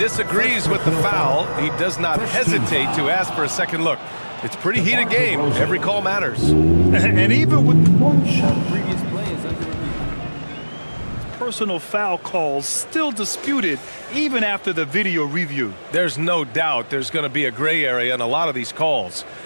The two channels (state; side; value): inverted; both; correlation -1.00